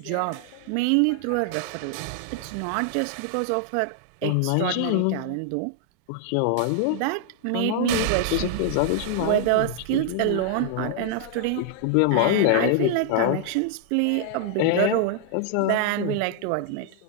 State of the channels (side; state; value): both; different; correlation 0.00